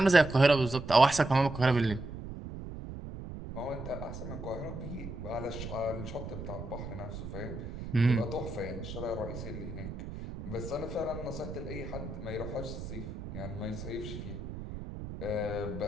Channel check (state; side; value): noise; right; rumble, 9 dB below the sound